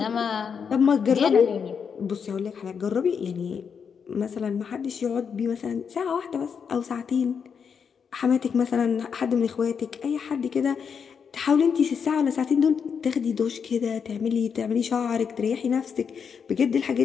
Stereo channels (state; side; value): quieter; right; 6.6 dB